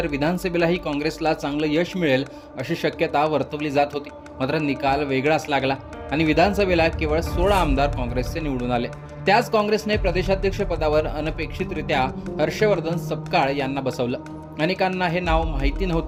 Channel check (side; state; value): both; identical; correlation 1.00